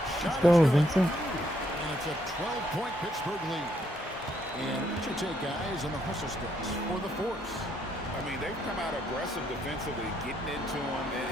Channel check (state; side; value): normal; both; correlation 0.73